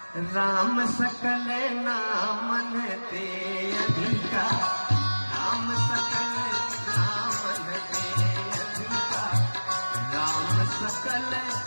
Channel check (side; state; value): both; inverted; correlation -1.00